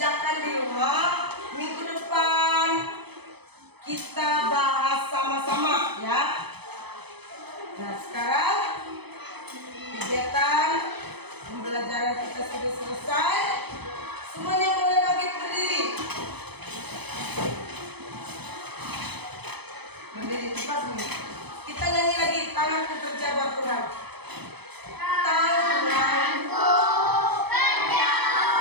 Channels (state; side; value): late; left; 0.98 ms